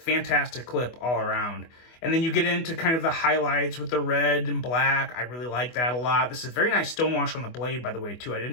clip all around. And then you get into kind of the highlights with the red and black. I really like that a lot. This is very nice stonewash on the blade, by the way, too. I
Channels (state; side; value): late; right; 24 ms